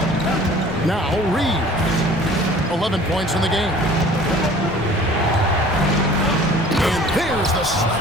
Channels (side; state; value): both; normal; correlation 0.48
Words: Now Reeves, 11 points in the game. And there's the